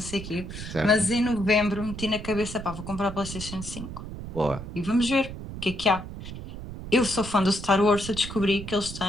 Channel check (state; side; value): noise; right; rumble, 10 dB below the sound